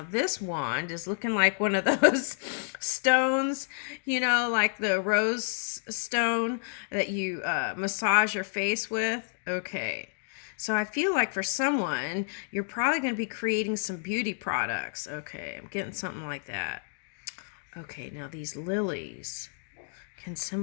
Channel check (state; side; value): silent; right; digital silence